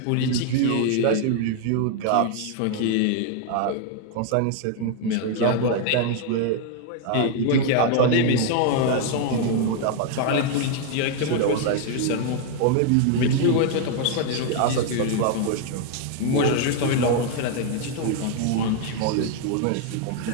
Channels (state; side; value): different; both; correlation 0.00